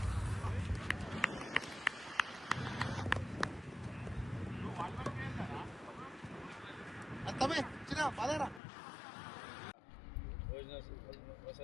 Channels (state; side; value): drops out; right; at 8.6 s